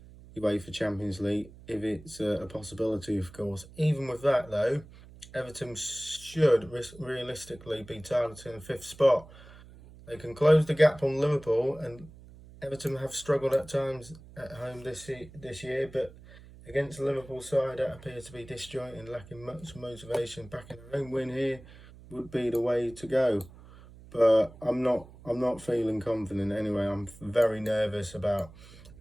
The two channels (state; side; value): noise; right; hum, 20 dB below the sound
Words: UEFA Champions League if it's a possibility, of course. Even with that, though, Everton should realistically be targeting the 5th spot. They can close the gap on Liverpool, and Everton have struggled at times at home this year, but against the Liverpool side that appears to be disjointed and lacking much motivation, backing a home win here would be the way to go. But I'm not feeling confident anyway. I'm very nervous about,